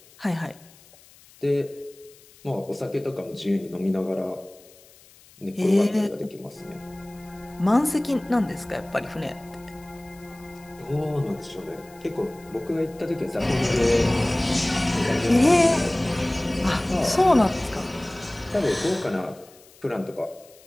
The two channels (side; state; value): left; noise; hiss, 25 dB below the sound